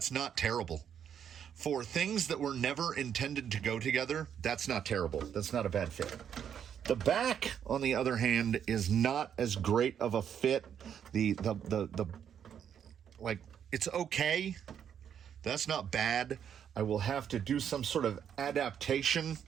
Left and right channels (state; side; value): quieter; left; 8.6 dB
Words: not terrible. For things that were never intended to go together, that's not terrible. That's not a bad fit. The back, on the other hand, is not as great of a fit. Like, it's okay. That's not bad. I will have to do some sort of adaptation